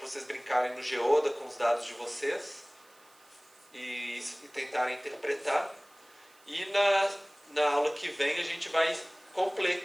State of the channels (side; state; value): right; noise; hiss, 28 dB below the sound